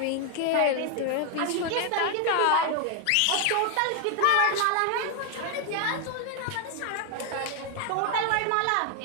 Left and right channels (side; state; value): both; different; correlation 0.00